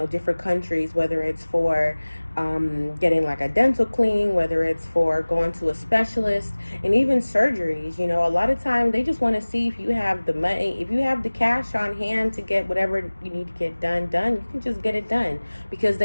different countries, whether it's for getting like a dental cleaning, whether it's for going to a specialist, and even surgeries. A lot of times they just want to see if you have the money, if you have the cash on hand to get whatever you need to get done. You can just get it done because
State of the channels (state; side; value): inverted; both; correlation -1.00